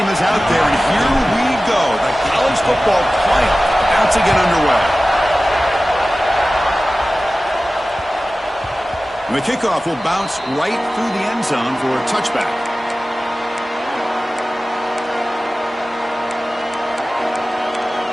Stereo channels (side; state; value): both; normal; correlation 0.96